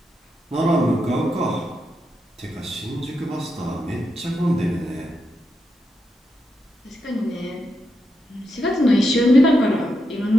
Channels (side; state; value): both; normal; correlation 0.84